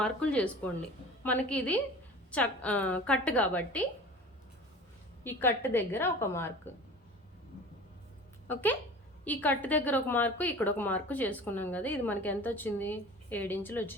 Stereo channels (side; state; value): both; normal; correlation 0.39